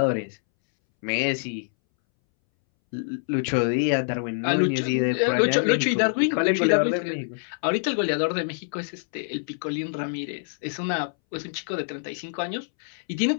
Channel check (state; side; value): silent; right; 61 dB below the other